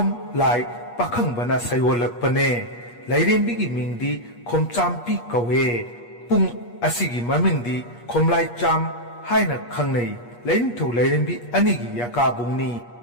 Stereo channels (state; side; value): late; right; 8.4 ms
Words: Lai Pakhangbana Sayolakpane Lairembigi Mingdi Khom Champi Kawe Pung Asigi Mamingdi Komlai Cham Haina Khangnei Laining Thau Lairembi Anigi Yakabungni